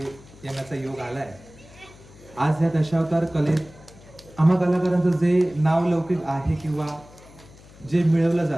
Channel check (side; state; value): left; noise; hum, 22 dB below the sound